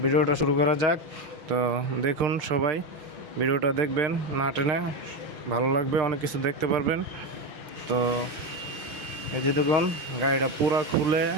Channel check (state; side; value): late; left; 6.5 ms